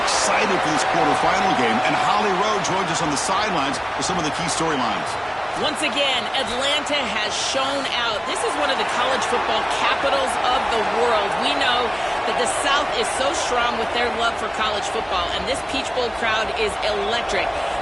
for this quarterfinal game, and Holly Rowe joins us on the sidelines with some of the key storylines. Once again, Atlanta has shown out. This is one of the college football capitals of the world. We know that the South is so strong with their love for college football, and this Peach Bowl crowd is electric.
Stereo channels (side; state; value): both; identical; correlation 1.00